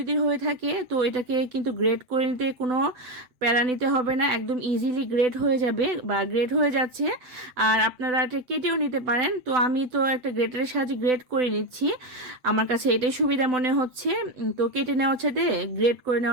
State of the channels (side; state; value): left; late; 7.9 ms